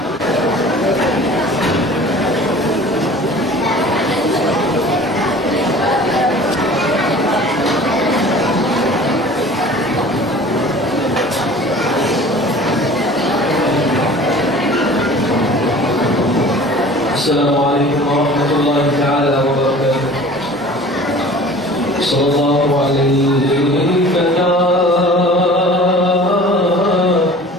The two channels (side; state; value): both; normal; correlation 0.44